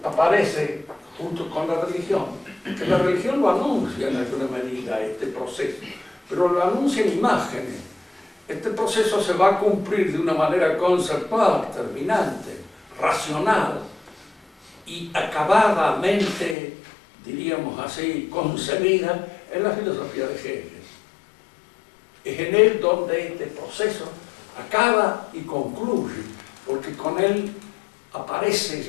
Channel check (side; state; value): right; drops out; at 16.6 s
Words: aparece junto con la religión, que la religión lo anuncia en alguna medida, este proceso, pero lo anuncia en imágenes. Este proceso se va a cumplir de una manera conceptual, terminante, racional y acabadamente, diríamos así, concebida en la filosofía de Hegel. Es en él donde este proceso acaba y concluye, porque con él aparece